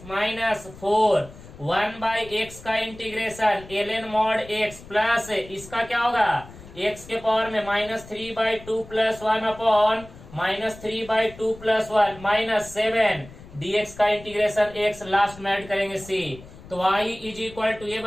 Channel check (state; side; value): noise; left; rumble, 18 dB below the sound